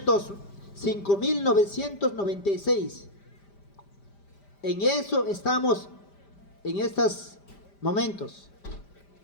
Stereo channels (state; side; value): late; right; 5.0 ms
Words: 5996. En eso estamos en estos momentos.